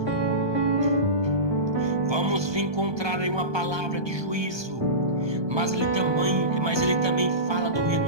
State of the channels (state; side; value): late; left; 1.2 ms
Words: vamos encontrar aí uma palavra de juízo, mas ele também fala do